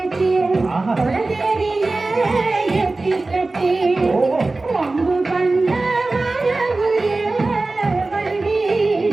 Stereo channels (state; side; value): quieter; left; 3.3 dB